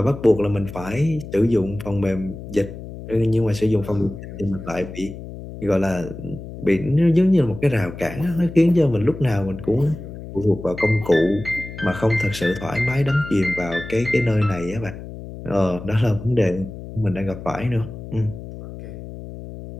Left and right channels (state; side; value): noise; left; hum, 12 dB below the sound